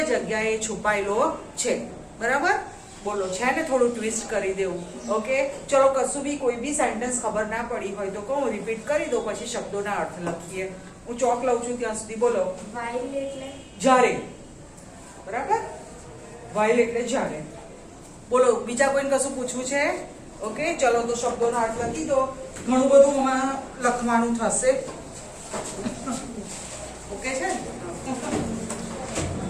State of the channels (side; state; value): both; identical; correlation 1.00